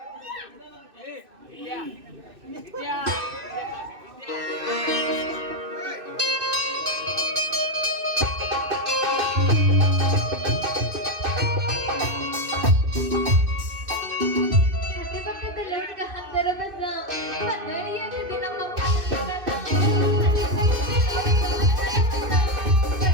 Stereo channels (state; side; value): late; left; 2.6 ms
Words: ಅಕ್ಕಪಕ್ಕದಲ್ಲಿ ಹುಡುಗ ಹತ್ತರ ಬಂದ ಹದಿನೈದು ನಮ್ಮ